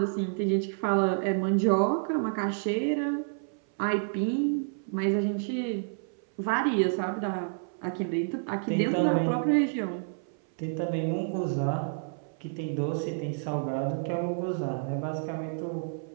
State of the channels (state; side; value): silent; left; 58 dB below the other